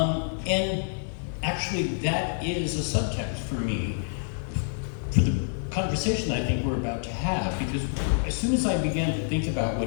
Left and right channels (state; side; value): silent; right; 60 dB below the other